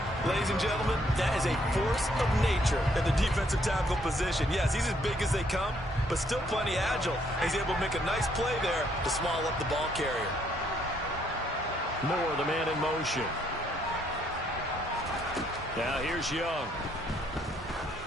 Ladies and gentlemen, that is a force of nature in the defensive tackle position. Yes, he's as big as they come, but still plenty agile. He's able to make a nice play there to small up the ball carrier. Moore, the man in motion. Now here's Young.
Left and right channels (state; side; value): normal; both; correlation 0.69